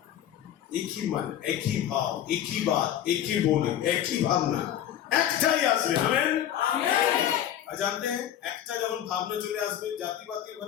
एक ही मन, एक ही भाव, एक ही बात, एक ही बोली, एक ही भावना, একটাই আসবে, আমেন। জানতে हैं একটা যখন ভাবনা চলে আসবে, জাতিবাদী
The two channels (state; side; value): quieter; right; 10.9 dB